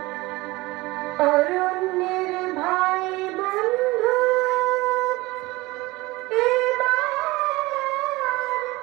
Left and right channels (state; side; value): quieter; left; 21.1 dB